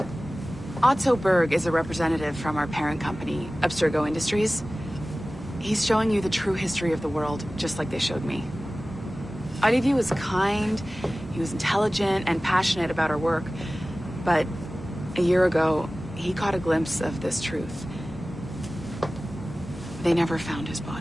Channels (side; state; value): both; normal; correlation 0.97